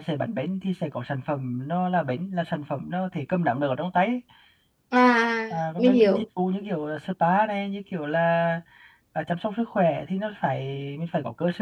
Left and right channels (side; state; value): both; identical; correlation 1.00